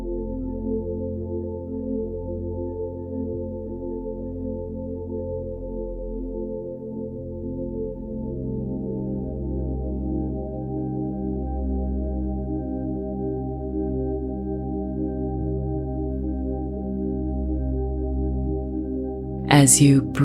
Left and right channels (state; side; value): identical; both; correlation 1.00